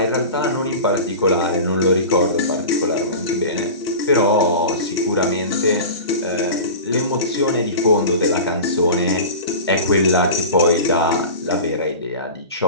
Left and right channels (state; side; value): inverted; both; correlation -0.33